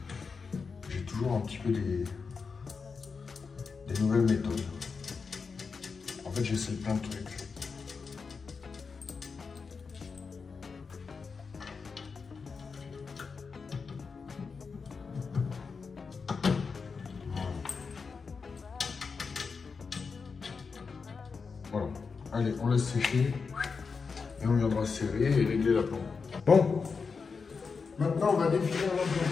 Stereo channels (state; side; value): quieter; right; 5.1 dB